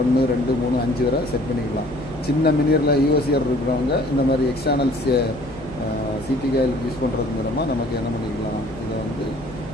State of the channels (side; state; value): left; noise; hum, 16 dB below the sound